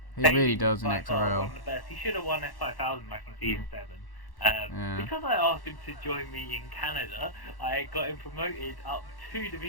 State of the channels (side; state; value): right; late; 1.1 ms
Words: He really does in XRL. One of the best. He should have won F5000 back in season 7. Because I asked him to join me in Canada, I got him promoted up 2